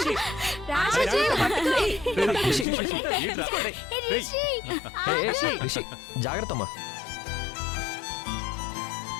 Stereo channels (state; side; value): drops out; right; at 2.7 s